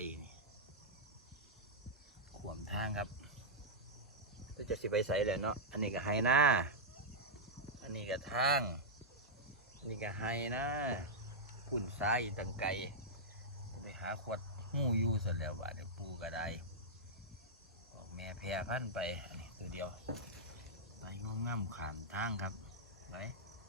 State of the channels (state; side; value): normal; both; correlation -0.08